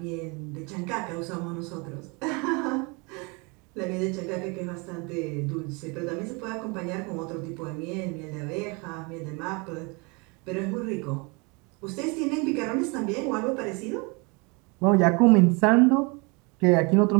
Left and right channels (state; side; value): quieter; left; 29.6 dB